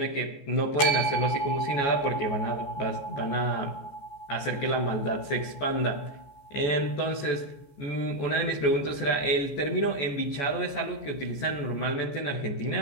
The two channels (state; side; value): late; right; 14 ms